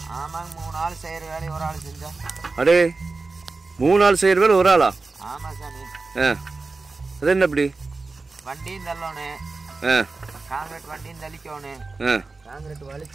ஆமாங்க, 3 ஆள் செய்யற வேலையை ஒரு ஆள் செஞ்சா. அடே, 3 ஆள் செய்யற வேலை ஒரு ஆளா? ஆமா சாமி. அது என்ன அப்படி? வண்டியும் தள்ளணும், காங்கிரீட் வண்டியும் தள்ளிக்கணும், காங்கிரீட்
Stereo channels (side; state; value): left; quieter; 3.8 dB